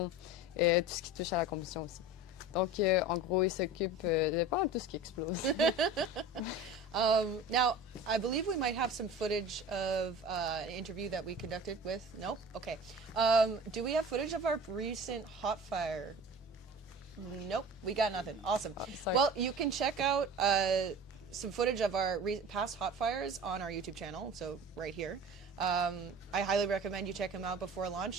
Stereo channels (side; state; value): both; normal; correlation 0.37